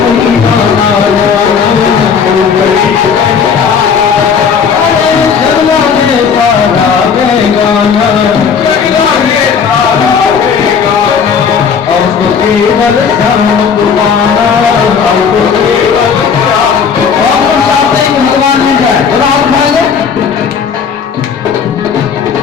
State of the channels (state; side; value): quieter; right; 6.5 dB